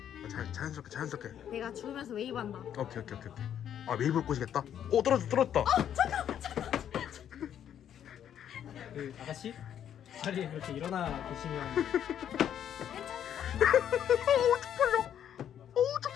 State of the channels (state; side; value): quieter; right; 9.7 dB